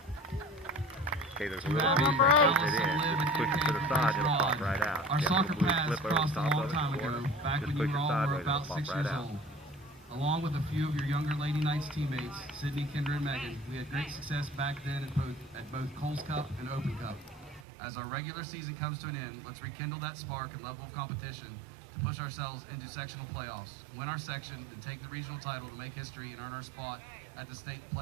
Okay, there's a little piece that holds it in. Just push it to the side, it'll pop right out. Our soccer paths crossed a long time ago, back when you were all about 6 years old. Along with a few of your younger Lady Knights teammates, Sydney, Kendra, and Megan, we had great success back then at both Coles Cup and Open Cup. As our regular season comes to an end, let's rekindle that spark and level of competition to push ourselves into sectional playoffs, win our section, and take the regional title to make history and earn our spot at the state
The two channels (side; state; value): left; drops out; at 17.7 s